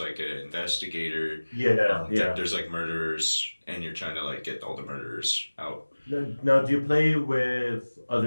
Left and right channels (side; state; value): both; inverted; correlation -1.00